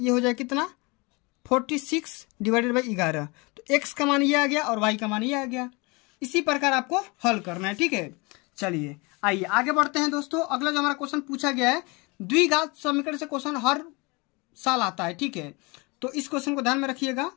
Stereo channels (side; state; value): right; quieter; 27.3 dB